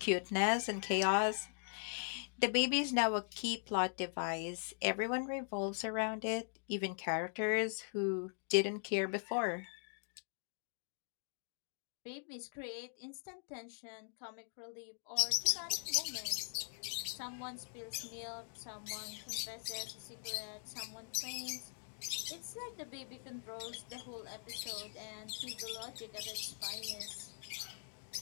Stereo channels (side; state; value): right; silent; digital silence